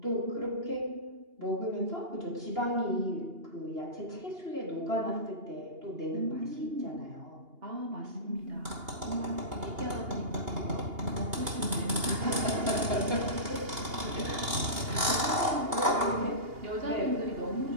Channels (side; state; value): left; late; 2.8 ms